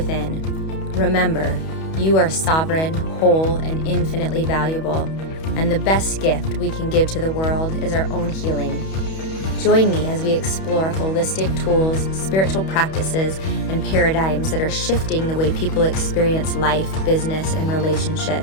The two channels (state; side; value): late; right; 31 ms